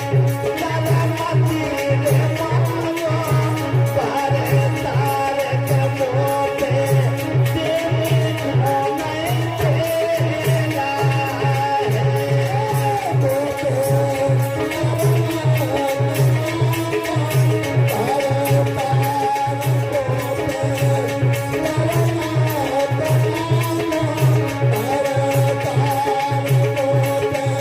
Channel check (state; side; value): identical; both; correlation 1.00